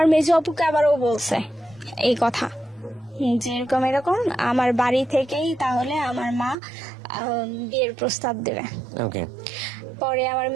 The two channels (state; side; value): drops out; left; at 6.6 s